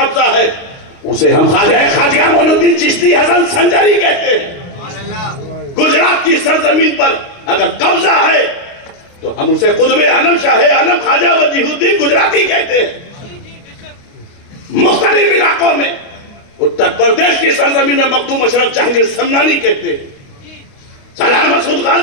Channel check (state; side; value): late; right; 29 ms